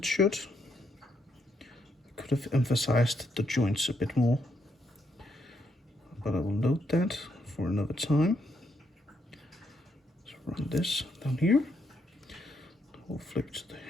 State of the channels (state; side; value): normal; both; correlation 0.77